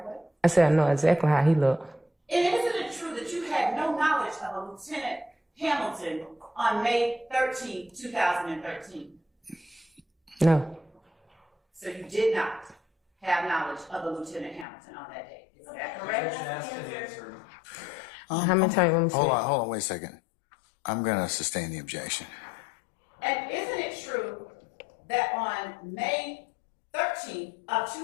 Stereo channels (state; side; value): drops out; right; at 14.7 s